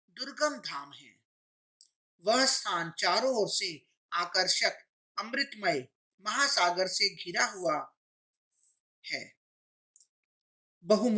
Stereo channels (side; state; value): both; identical; correlation 1.00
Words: दुर्गम धाम है। वह स्थान चारों ओर से आकर्षक अमृतमय महासागर से घिरा हुआ है,